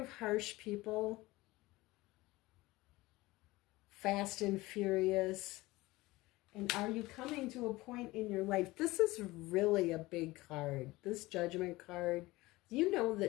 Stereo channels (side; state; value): right; quieter; 19.9 dB